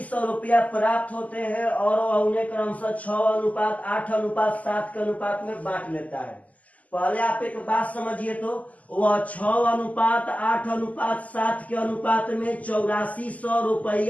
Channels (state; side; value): late; right; 0.074 ms